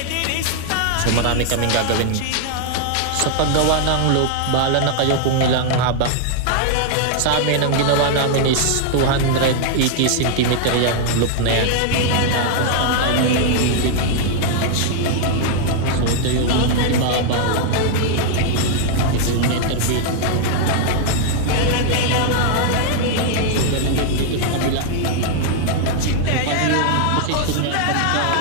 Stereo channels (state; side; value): different; both; correlation 0.00